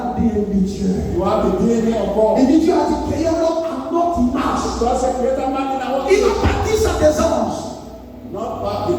de Dieu. You have the DNA of God. Et dit Dieu a dit créer l'homme à notre image. So as a creator man in our Il n'a pas dit ça des anges. not by the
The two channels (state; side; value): identical; both; correlation 1.00